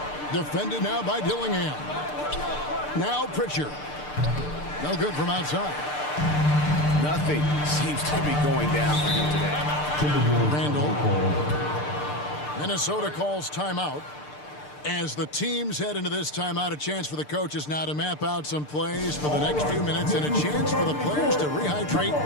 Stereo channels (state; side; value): late; right; 6.7 ms